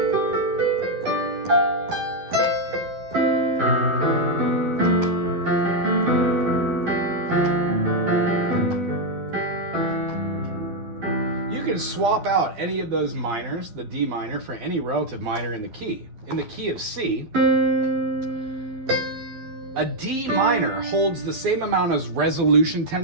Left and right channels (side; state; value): left; late; 11 ms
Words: can swap out any of those minors, the D minor, for any relative minor in the key. In the key of C, a D minor holds the same amount as resolution